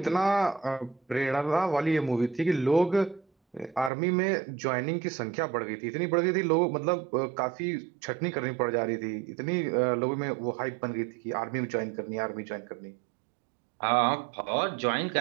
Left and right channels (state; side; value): drops out; left; at 3.9 s